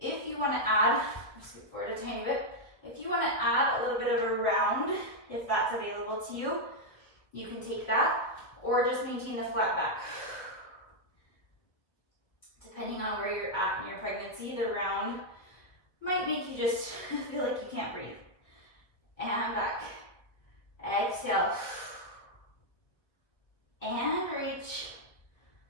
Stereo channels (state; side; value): late; right; 1.8 ms